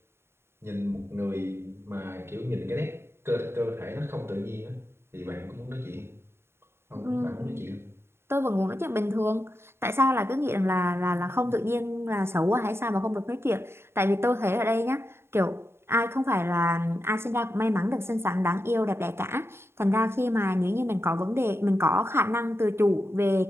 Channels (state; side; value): late; left; 0.12 ms